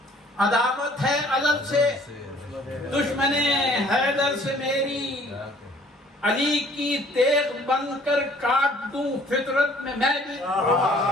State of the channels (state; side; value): normal; both; correlation 0.56